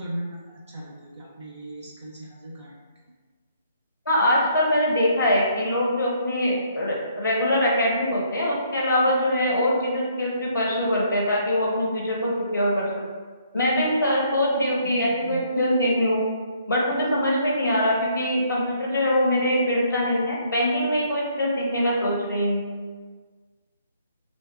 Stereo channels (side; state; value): both; inverted; correlation -0.66